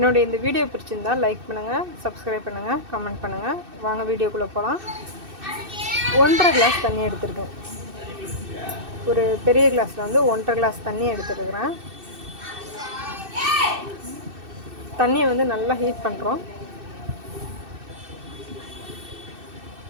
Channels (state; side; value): late; left; 2.6 ms